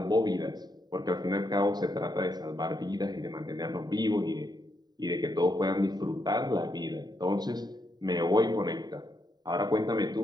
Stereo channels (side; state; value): left; late; 0.20 ms